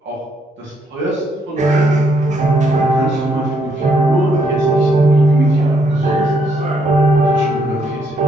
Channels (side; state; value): both; normal; correlation 0.73